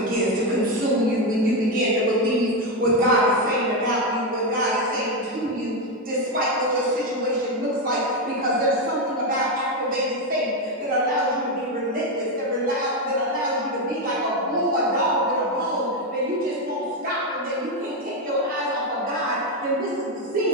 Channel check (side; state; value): both; normal; correlation 0.08